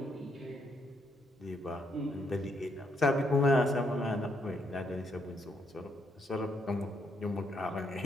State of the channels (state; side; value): normal; both; correlation 0.75